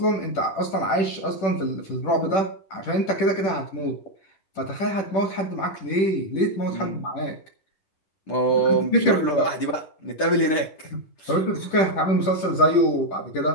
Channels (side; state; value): right; late; 10 ms